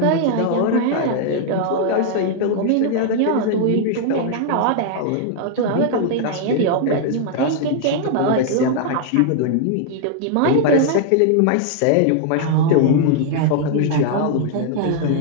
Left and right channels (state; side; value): different; both; correlation 0.00